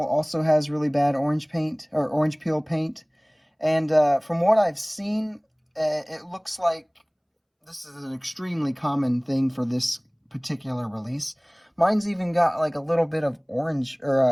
also has really bad orange paint, or orange peel paint. And from what I've seen, it looks like this is an extremely common thing for this particular release. Mine's even got like a little bit of orange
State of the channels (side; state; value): both; identical; correlation 1.00